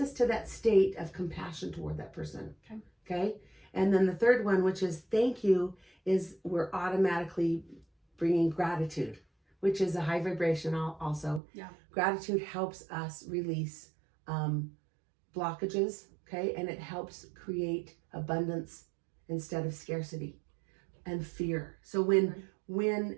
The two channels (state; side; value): drops out; left; at 11.4 s